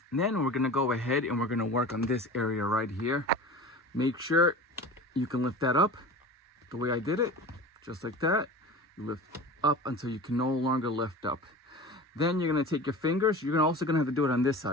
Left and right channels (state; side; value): normal; both; correlation 0.35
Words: Then we're going to go ahead and we're going to work on this area right here. Make sure you can lift that up the way I did it, just like that. You lift up until you can no longer lift up. Then you're going to take your fingers. You're also going to have to do it on this